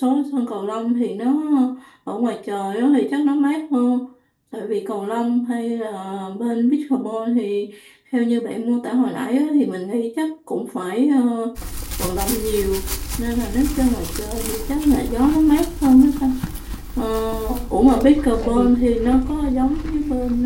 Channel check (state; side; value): identical; both; correlation 1.00